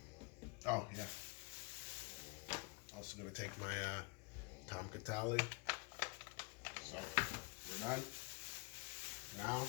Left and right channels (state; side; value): quieter; right; 28.2 dB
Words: Oh yeah. Also gonna take my Tom Catali. So we're done. Now